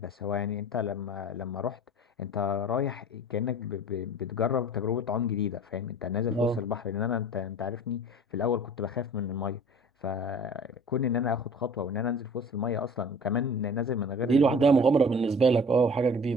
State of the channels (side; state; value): both; normal; correlation 0.44